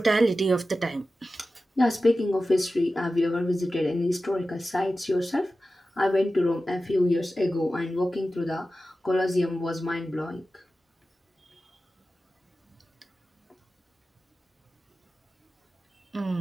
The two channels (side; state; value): both; normal; correlation 0.94